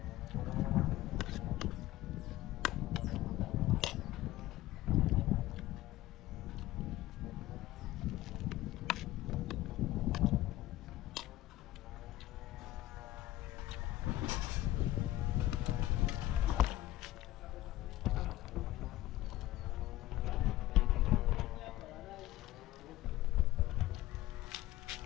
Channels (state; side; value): quieter; right; 15.8 dB